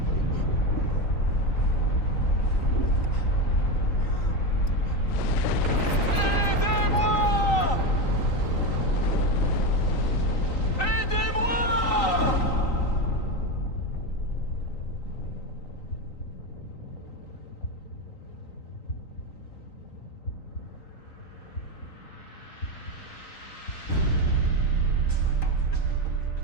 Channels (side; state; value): right; late; 3.9 ms